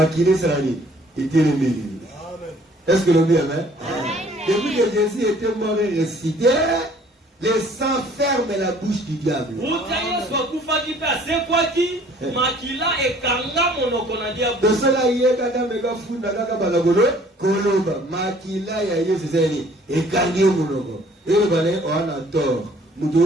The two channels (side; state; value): both; normal; correlation 0.56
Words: Est-ce que le bien, amen? Depuis que Jésus était mort et ressuscité, Le sang ferme la bouche du diable. De cela, il y a kaka mega funda kaka balagolo koloba makila ya Yesu zeni ekangi monoko. Et le balai on a tort.